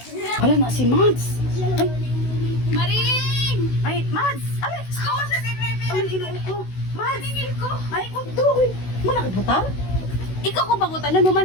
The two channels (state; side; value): late; right; 16 ms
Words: Wala na si Mads! Ay! Maring! Ay, Mads! Ay! Ako sa bebe. Ay, inuo ko! Mads! Tingin ko. Ay, kundo! Muna kagbutang? Ikaw ko bagutan na naman